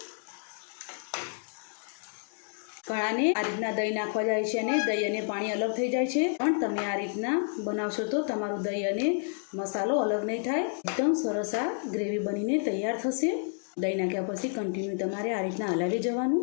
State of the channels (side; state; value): right; silent; 58 dB below the other